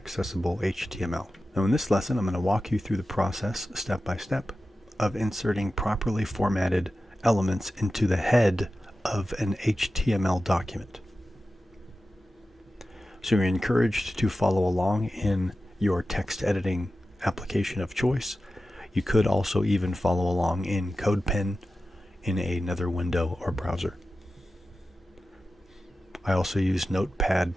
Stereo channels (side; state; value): both; normal; correlation 0.93